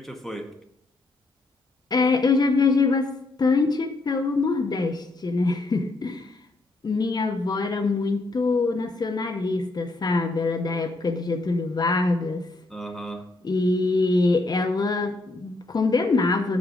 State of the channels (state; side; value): quieter; right; 3.1 dB